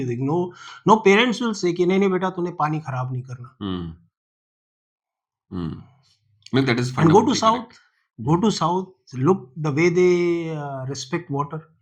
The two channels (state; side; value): identical; both; correlation 1.00